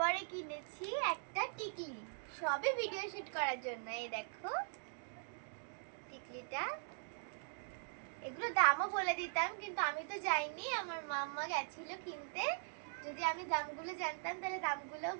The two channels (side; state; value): left; silent; digital silence